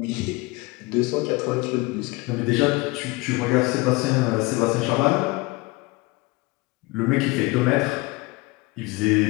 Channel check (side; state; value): right; quieter; 23.1 dB